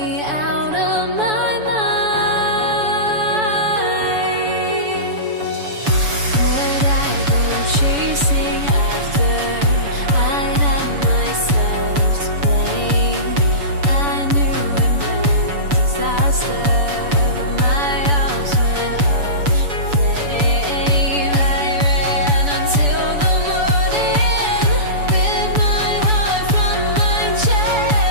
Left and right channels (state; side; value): late; left; 7.0 ms